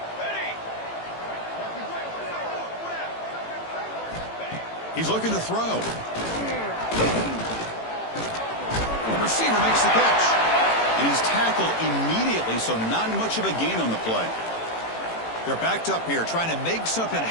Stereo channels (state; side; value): late; right; 18 ms